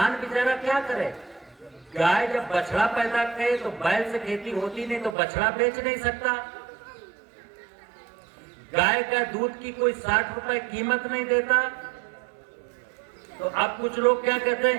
बेचारा क्या करे? गाय जब बछड़ा पैदा करे तो बैल से खेती होती नहीं, तो बछड़ा बेच नहीं सकता। गाय का दूध की कोई 60 रुपए कीमत नहीं देता। तो अब कुछ लोग क्या कहते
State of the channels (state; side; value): drops out; left; at 5.2 s